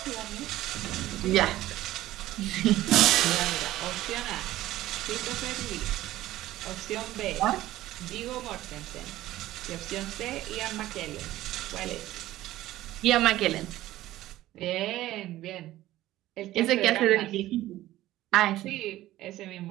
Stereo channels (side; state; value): left; quieter; 15.3 dB